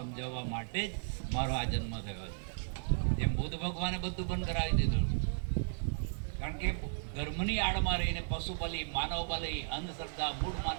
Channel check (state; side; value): silent; left; digital silence